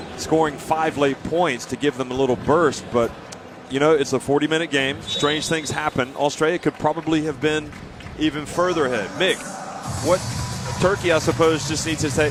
scoring 5 late points to give them a little burst. But, you know, it's a 40-minute game. Strange things happen. Australia could probably have been even further ahead. Mick, what Turkey, I suppose, just needs to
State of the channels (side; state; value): both; identical; correlation 1.00